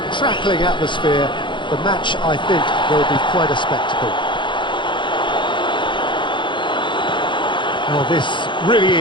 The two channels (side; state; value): right; late; 0.23 ms